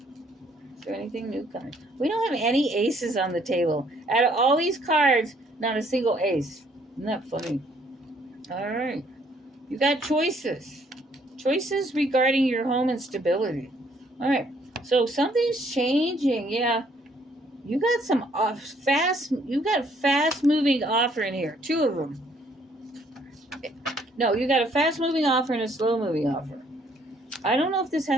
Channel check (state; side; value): normal; both; correlation 0.65